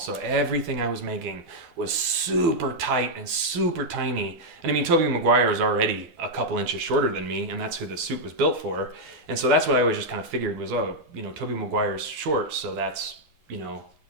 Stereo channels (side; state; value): left; late; 12 ms